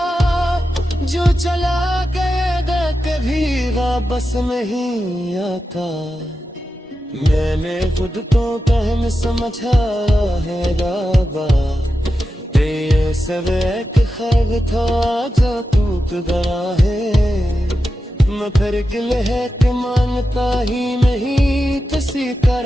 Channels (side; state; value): both; normal; correlation 0.91